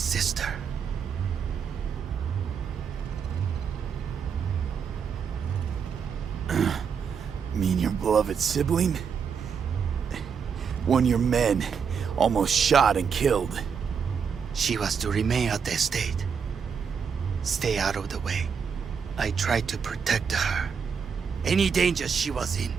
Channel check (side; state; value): left; quieter; 6.6 dB